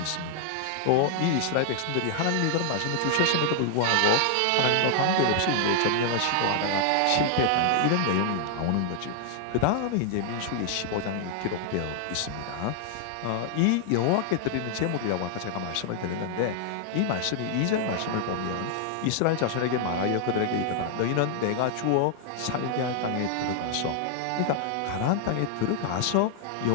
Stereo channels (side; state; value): both; different; correlation 0.00